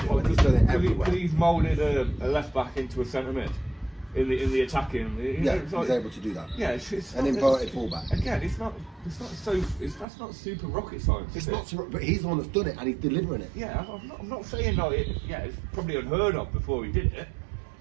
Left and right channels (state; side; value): drops out; left; at 10.1 s